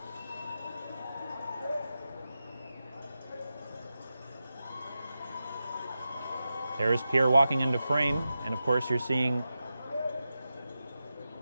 There's Pierre walking into frame, and of course you're seeing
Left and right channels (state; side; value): inverted; both; correlation -0.91